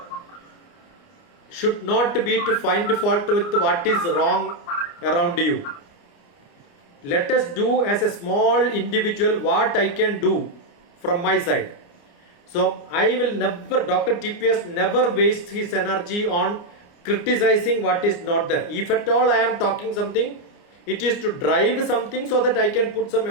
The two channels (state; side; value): late; right; 29 ms